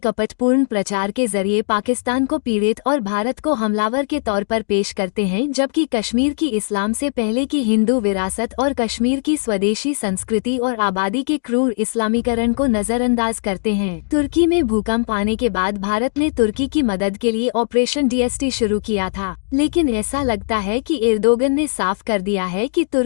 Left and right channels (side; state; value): right; silent; digital silence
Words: प्रचार के जरिए पाकिस्तान को पीड़ित और भारत को हमलावर के तौर पर पेश करते हैं, जबकि कश्मीर की इस्लाम से पहले की हिंदू विरासत और कश्मीर की स्वदेशी संस्कृति और आबादी के क्रूर इस्लामीकरण को नजरअंदाज करते हैं। तुर्की में भूकंप आने के बाद भारत ने तुर्की की मदद के लिए ऑपरेशन DST शुरू किया था, लेकिन ऐसा लगता है कि एर्दोगन ने साफ कर दिया है कि